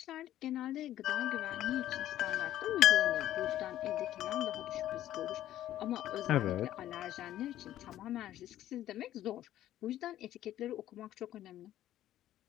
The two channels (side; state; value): right; quieter; 12.9 dB